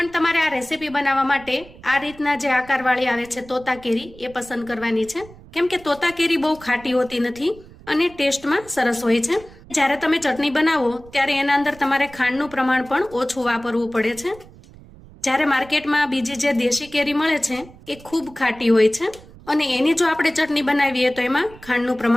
તમારે આ રેસીપી બનાવવા માટે આ રીતના જે આકારવાળી આવે છે તોતા કેરી એ પસંદ કરવાની છે, કેમ કે તોતા કેરી બહુ ખાટી હોતી નથી અને ટેસ્ટમાં સરસ હોય છે। જ્યારે તમે ચટણી બનાવો ત્યારે એના અંદર તમારે ખાંડનું પ્રમાણ પણ ઓછું વાપરવું પડે છે। જ્યારે માર્કેટમાં બીજી જે દેશી કેરી મળે છે એ ખૂબ ખાટી હોય છે અને એની જો આપણે ચટણી બનાવીએ તો એમાં ખાંડનું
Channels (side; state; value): right; noise; rumble, 21 dB below the sound